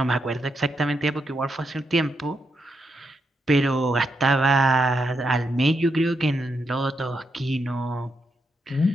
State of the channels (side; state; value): both; normal; correlation 0.81